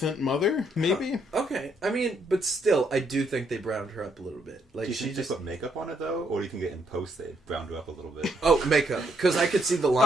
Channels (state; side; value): normal; both; correlation 0.73